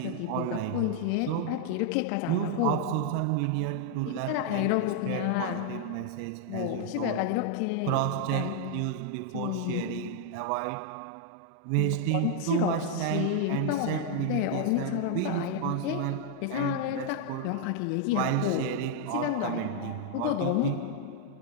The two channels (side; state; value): both; different; correlation 0.00